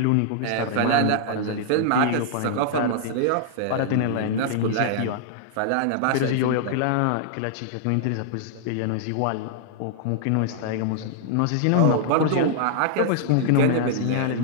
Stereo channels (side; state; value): both; different; correlation -0.01